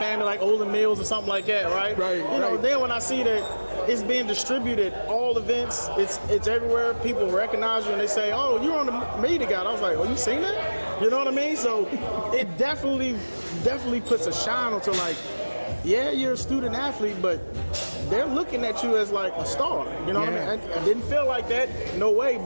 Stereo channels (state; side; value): inverted; both; correlation -1.00